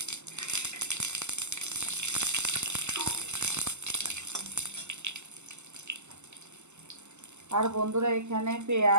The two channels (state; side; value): late; left; 0.83 ms